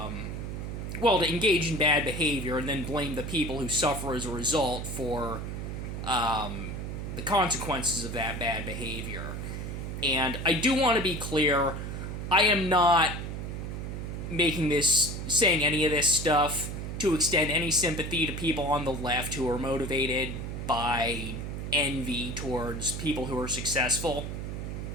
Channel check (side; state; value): right; noise; hum, 5 dB below the sound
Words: engage in bad behavior and then blame the people who suffer as a result for the consequences of that bad behavior. And I do want to be clear, I am not saying any of this stuff to extend any sympathy to people on the left who are motivated by envy towards people who are successful.